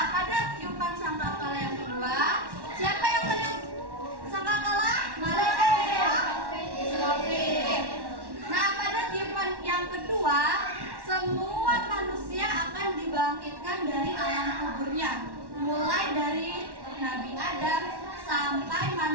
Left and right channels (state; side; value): late; left; 1.1 ms